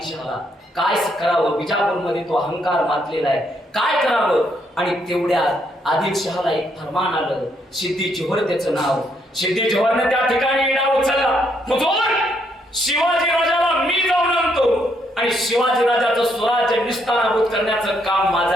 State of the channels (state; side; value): normal; both; correlation 0.74